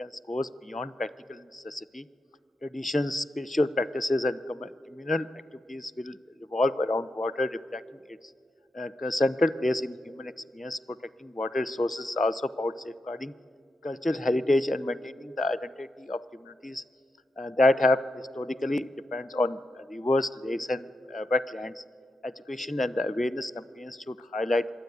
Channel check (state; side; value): normal; both; correlation 0.86